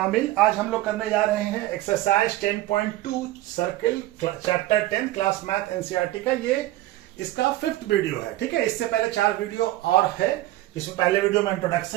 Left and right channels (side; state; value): left; quieter; 16.2 dB